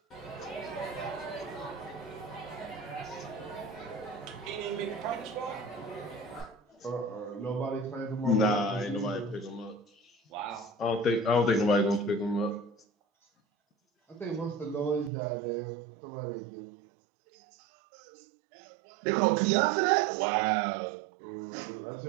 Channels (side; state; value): left; drops out; at 15.1 s